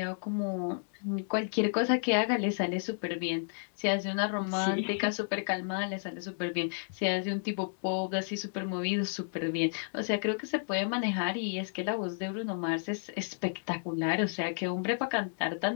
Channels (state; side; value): silent; right; 57 dB below the other